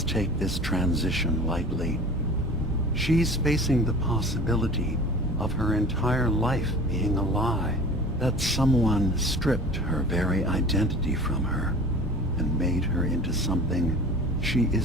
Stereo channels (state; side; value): normal; both; correlation 0.41